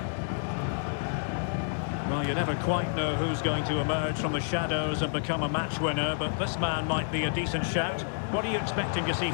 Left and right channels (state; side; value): silent; right; digital silence